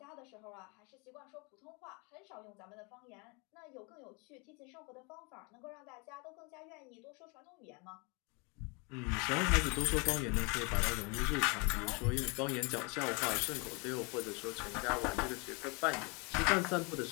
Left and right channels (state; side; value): quieter; right; 31.0 dB